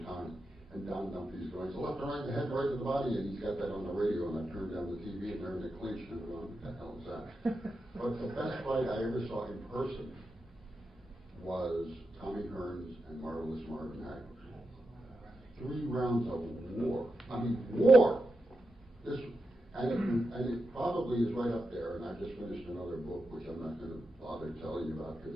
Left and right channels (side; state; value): both; normal; correlation 0.88